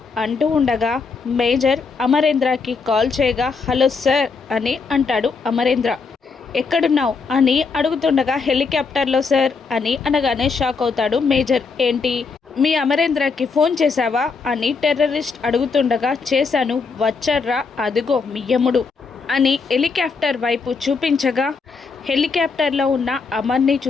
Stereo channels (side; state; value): right; quieter; 4.8 dB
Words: అంటూ ఉండగా, మేజర్ అమరేంద్రకి కాల్ చేయగా, హలో సార్ అని అంటాడు అమరేంద్ర. ఎక్కడున్నావు అని అడుగుతుండగా, హెలికాప్టర్లో సార్ అని అనగానే షాక్ అవుతాడు మేజర్. ఏంటి, మీ అమరేంద్రకి ఫోన్ చేశావా అని టెర్రరిస్ట్ అడుగుతుండగా, చేశాను, వచ్చాడ్రా అదిగో మీ యముడు అని హెలికాప్టర్ వైపు చూపించగా, హెలికాప్టర్లో ఉన్న అమర్ని